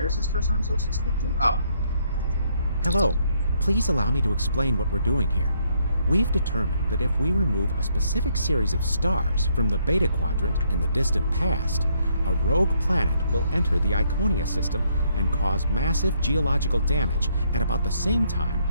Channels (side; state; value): both; inverted; correlation -0.71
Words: is this person I'm supposed to speak to? Oh. Hello. Please allow me to explain what we're doing here. We've determined that if we remove a specific series of stars from the Beta Quadrant in the distant past, a rogue planet will enter the Iconia system and cause massive geological damage at about the same time